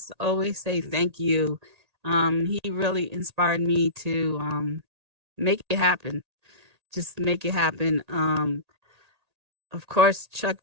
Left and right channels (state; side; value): late; left; 1.8 ms